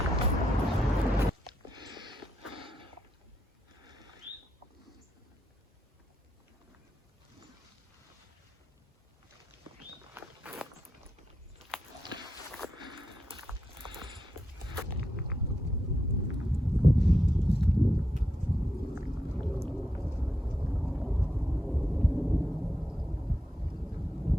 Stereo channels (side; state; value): both; normal; correlation 0.83